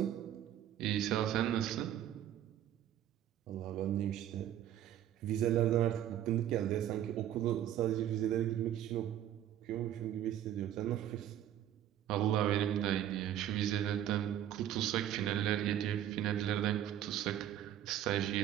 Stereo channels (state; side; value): quieter; left; 11.3 dB